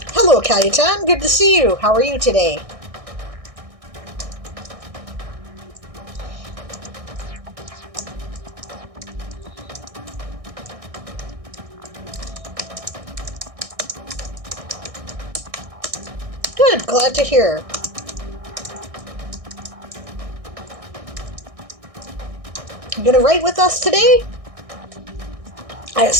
Hello, Cayetan. Good to see you. How are you today? Good. Glad to hear. You gonna write with us today? I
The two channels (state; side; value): late; left; 1.6 ms